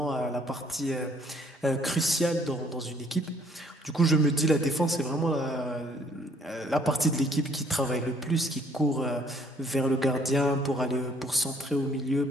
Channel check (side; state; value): both; normal; correlation 0.62